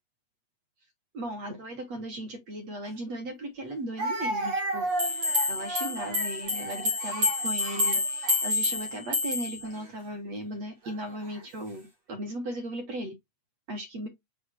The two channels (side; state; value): left; late; 8.3 ms